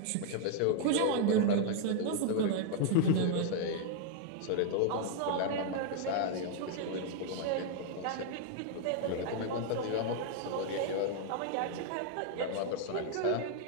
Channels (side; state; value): both; different; correlation 0.00